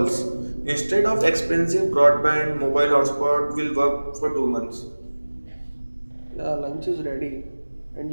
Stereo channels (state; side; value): inverted; both; correlation -1.00